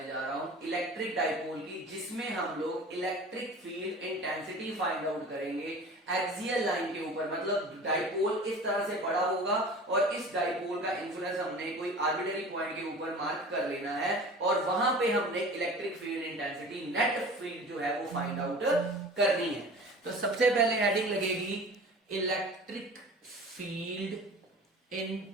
जा रहा हूं इलेक्ट्रिक डाइपोल की, जिसमें हम लोग electric field intensity find out करेंगे एक्सियल लाइन के ऊपर। मतलब डाइपोल इस तरह से पड़ा होगा और इस डाइपोल का इंफ्लुएंस हमने कोई आर्बिट्ररी पॉइंट के ऊपर मार्क कर लेना है और वहां पे हमने electric field intensity net field जो है वो फाइंड आउट करनी है। तो सबसे पहले हेडिंग लगेगी electric field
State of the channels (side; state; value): both; normal; correlation 0.40